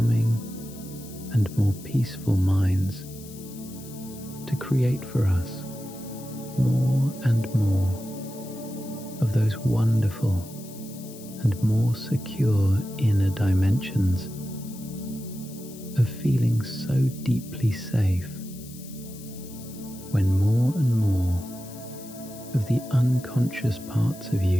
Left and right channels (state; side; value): noise; left; hiss, 18 dB below the sound